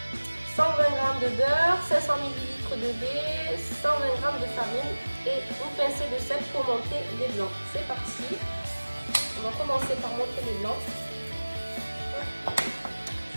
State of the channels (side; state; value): both; inverted; correlation -1.00